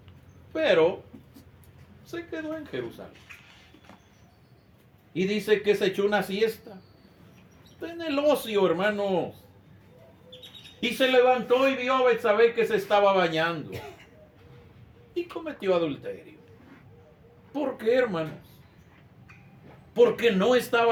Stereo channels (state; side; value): identical; both; correlation 1.00